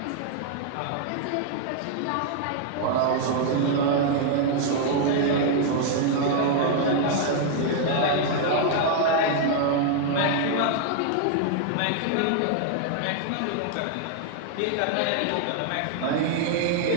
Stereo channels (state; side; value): different; both; correlation 0.00